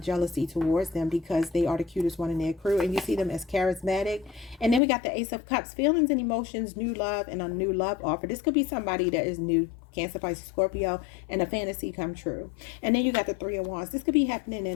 jealousy towards them because they are the cutest one in their crew. And you see them as charismatic. And then we got the Ace of Cups. Feelings and emotions, new love, and a new love offer. This could be somebody that is new. Cancer, Pisces, Scorpio, and a fantasy come true. And then you got the Three of Wands. This could be happening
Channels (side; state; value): right; drops out; at 4.8 s